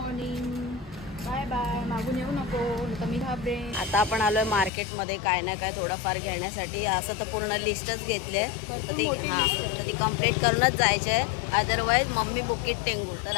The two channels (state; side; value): drops out; right; at 4.7 s